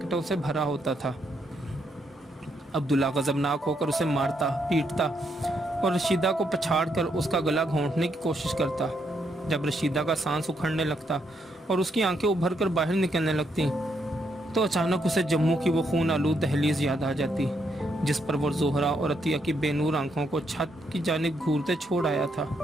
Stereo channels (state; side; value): normal; both; correlation 0.77